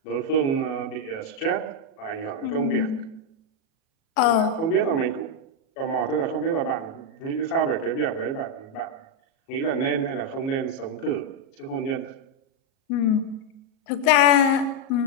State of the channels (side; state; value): right; late; 37 ms